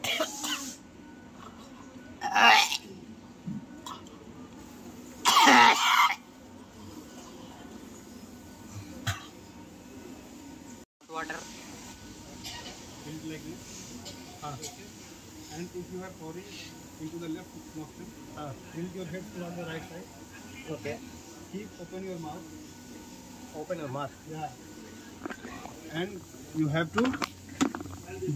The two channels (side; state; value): both; identical; correlation 1.00